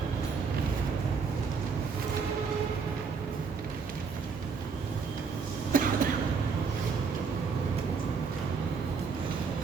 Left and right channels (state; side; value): quieter; left; 5.3 dB